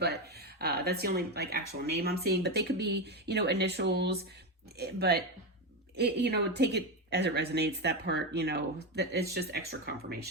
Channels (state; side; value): normal; both; correlation 0.13